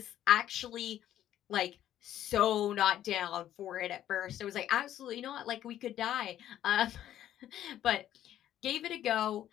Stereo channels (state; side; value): quieter; right; 11.8 dB